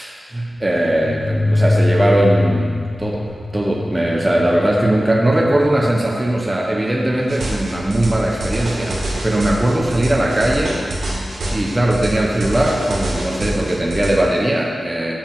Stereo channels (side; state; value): both; normal; correlation 0.96